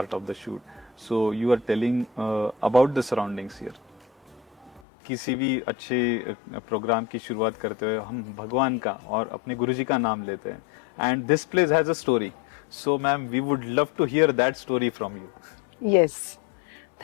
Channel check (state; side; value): drops out; right; at 4.8 s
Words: of the shoot, so you are telling about the surroundings here. किसी भी अच्छे प्रोग्राम की शुरुआत करते हुए हम भगवान का और अपने गुरुजी का नाम लेते हैं. And this place has a story. So ma'am, we would love to hear that story from you. Yes.